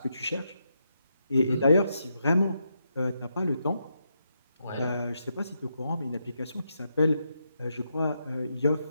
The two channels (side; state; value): both; inverted; correlation -0.82